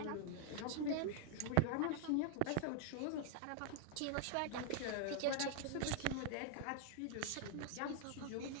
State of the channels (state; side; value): different; both; correlation 0.00